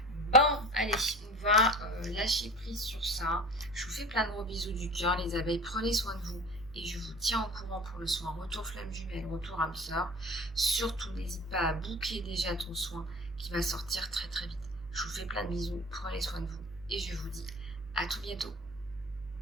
Bon, allez, on va lâcher prise sur ça. Je vous fais plein de gros bisous du cœur, les abeilles. Prenez soin de vous. Et je vous tiens au courant pour le soin. Retour flamme jumelle, retour âme sœur. Surtout, n'hésite pas à booker déjà ton soin qui va sortir très très vite. Je vous fais plein de bisous. Prenez soin de vous. Et je vous dis à tout bientôt.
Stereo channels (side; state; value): right; noise; hum, 18 dB below the sound